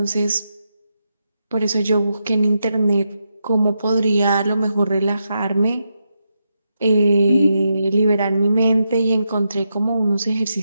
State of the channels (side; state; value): both; inverted; correlation -0.85